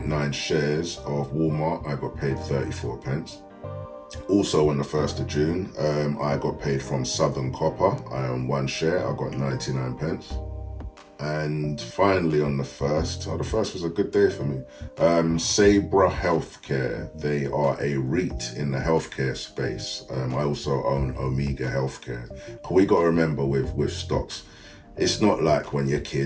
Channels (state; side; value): identical; both; correlation 1.00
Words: shares of Walmart, I got paid 34 pence. Also on the 1st of June, I got paid from Southern Copper. I own one share, I got 99 pence. And finally on the 1st, the 1st was a good day for me. Sabra Healthcare, they are a REIT in the healthcare space. I also own Omega Healthcare. We got to remember with stocks, it's not like when you're